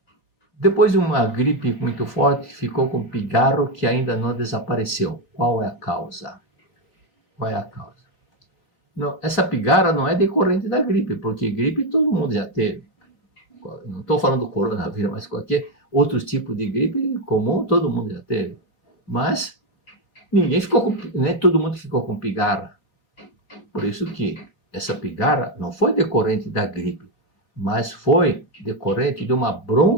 Depois de uma gripe muito forte, ficou com pigarro que ainda não desapareceu. Qual é a causa? Qual é a causa? Não, essa pigarra não é decorrente da gripe, porque gripe todo mundo já teve. Não estou falando do coronavírus, mas qualquer outro tipo de gripe comum todo mundo já teve. Mas todo mundo ficou com pigarra. Por isso que essa pigarra não foi decorrente da gripe, mas foi decorrente de uma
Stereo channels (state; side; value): late; right; 3.7 ms